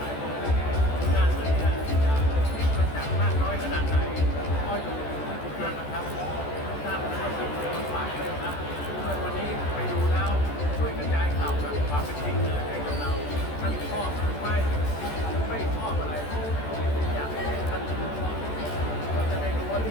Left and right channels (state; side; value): late; right; 14 ms